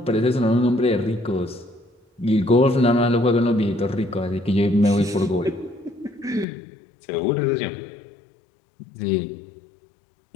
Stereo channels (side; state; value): right; drops out; at 6.5 s